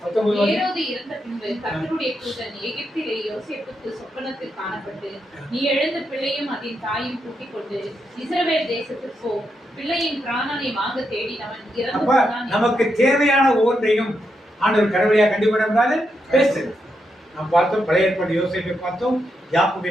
ஏரோது இறந்த பின்பு கர்த்தருடைய தூதன் எகிப்திலே யோசேப்புக்கு சொப்பனத்தில் காணப்பட்டு, நீ எழுந்த பிள்ளையும் அதன் தாயும் கூட்டிக் கொண்டு இஸ்ரவேல் தேசத்துக்கு போ. பிள்ளையின் பிராணனை வாங்க தேடினவன் இறந்து போனான். நமக்கு தேவையான ஒவ்வொன்றையும் ஆண்டவர் கடவுளையா கண்டிப்பாக பேசுறது. நாம் பார்த்தோம், பழைய ஏற்பாடு யோசேப்பை பார்த்தோம், யாக்கோபை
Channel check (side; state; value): both; normal; correlation 0.83